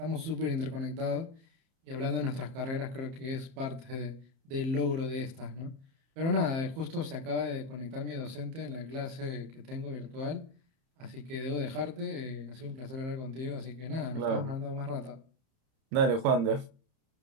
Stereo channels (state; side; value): late; left; 30 ms